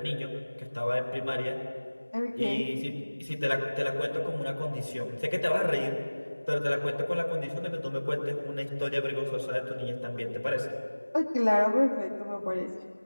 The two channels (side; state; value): both; inverted; correlation -1.00